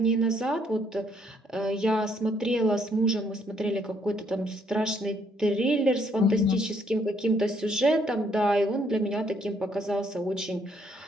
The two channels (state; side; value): normal; both; correlation 0.68